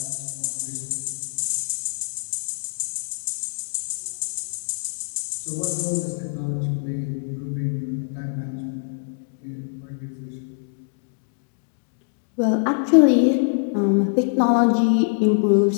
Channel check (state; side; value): silent; right; digital silence